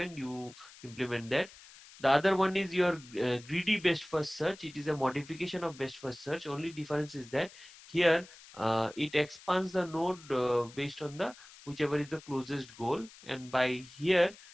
you implement that. The other one is your greedy best first search. It is a modification of best first search. Only difference is that here it expands the node based on the whichever is the closest goal. And by here,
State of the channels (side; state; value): left; noise; hiss, 20 dB below the sound